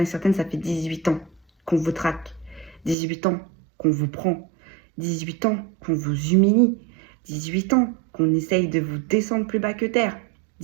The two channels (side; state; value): left; drops out; at 3.0 s